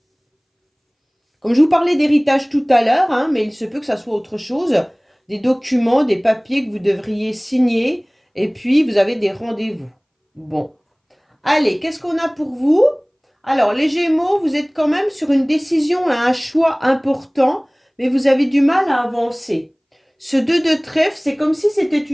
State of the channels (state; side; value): identical; both; correlation 1.00